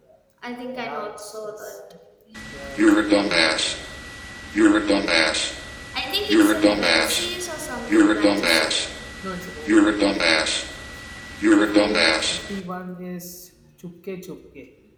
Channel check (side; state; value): both; identical; correlation 1.00